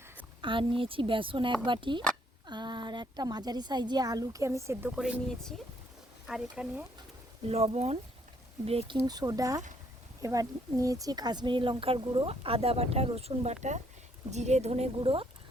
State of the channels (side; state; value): both; normal; correlation 0.68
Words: আর নিয়েছি বেসন 1 বাটি, আর একটা মাঝারি সাইজে আলুকে আমি সেদ্ধ করে নিয়েছি। আর এখানে লবণ, বেকিং সোডা, এবার নিয়েছি কাশ্মীরি লঙ্কার গুঁড়ো, আদা বাটা, রসুন বাটা, জিরে ধনে গুঁড়ো,